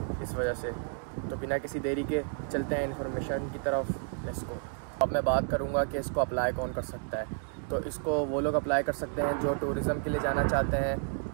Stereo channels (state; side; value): silent; left; 57 dB below the other